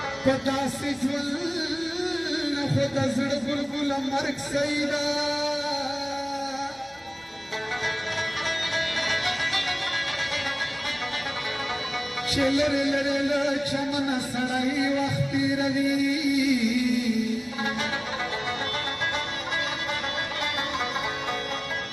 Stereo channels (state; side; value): identical; both; correlation 1.00